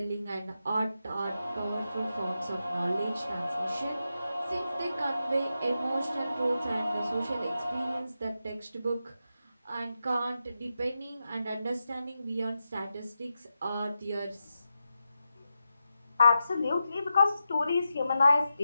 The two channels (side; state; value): both; inverted; correlation -0.89